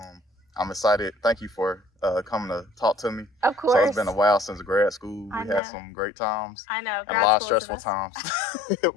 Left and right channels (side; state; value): right; drops out; at 5.6 s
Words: I'm excited. Thank you for coming to talk to me. Of course. So it's been a while since grad school. I We know. had some great times I know. and a Grad lot of school is the stressful best. times.